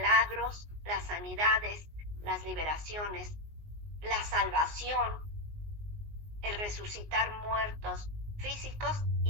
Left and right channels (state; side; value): late; left; 19 ms